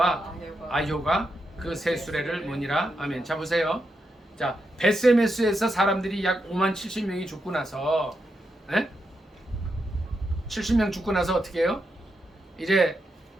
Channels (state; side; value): normal; both; correlation 0.84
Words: 아효가 그 새 수레를 모니라. 아멘. 자 보세요. 자 베세메스에서 사람들이 약 5만 70명이 죽고 나서 70명 죽고 나서 어떻게 해요? 이제